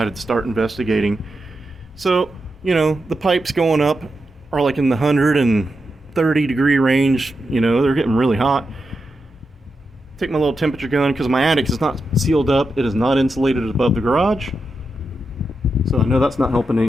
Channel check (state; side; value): normal; both; correlation 0.87